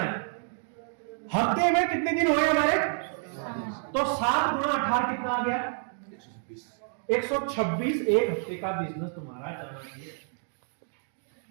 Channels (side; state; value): left; silent; digital silence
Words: हफ्ते में कितने दिन हुए हमारे? तो 7 गुणा 18 कितना आ गया? 126 एक हफ्ते का बिजनेस तुम्हारा जाना चाहिए।